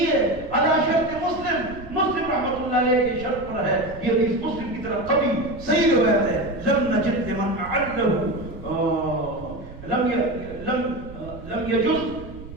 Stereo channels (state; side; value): noise; right; rumble, 16 dB below the sound